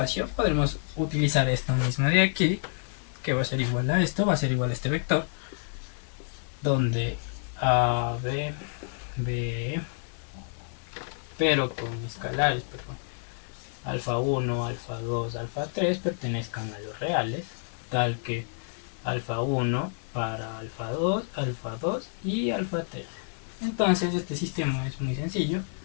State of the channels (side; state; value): right; silent; digital silence